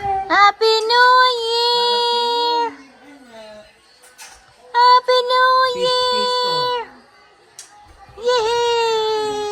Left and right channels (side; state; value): both; identical; correlation 1.00